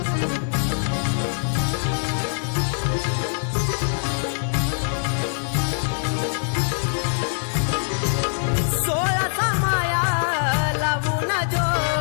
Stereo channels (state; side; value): silent; right; digital silence